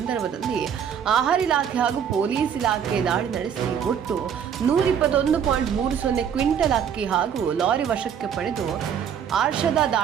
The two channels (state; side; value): quieter; left; 8.1 dB